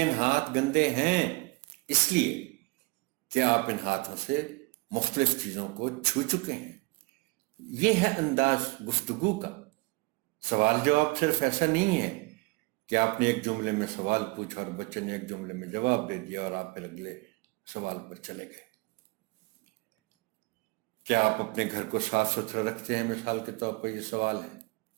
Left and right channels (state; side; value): quieter; left; 26.3 dB